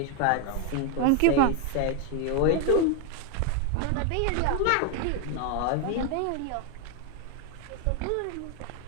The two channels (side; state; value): both; different; correlation 0.01